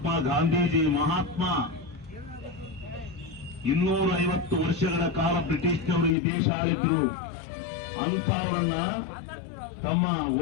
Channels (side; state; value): right; drops out; at 6.2 s